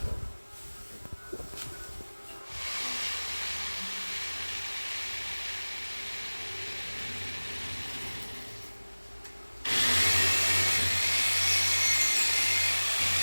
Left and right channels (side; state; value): both; inverted; correlation -1.00